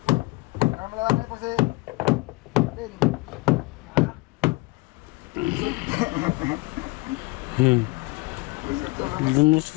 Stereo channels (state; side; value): quieter; right; 24.7 dB